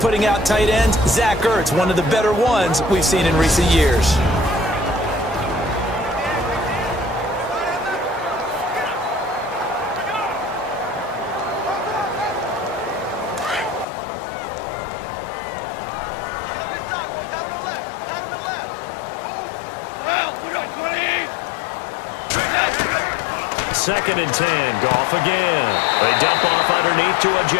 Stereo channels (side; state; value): right; drops out; at 13.9 s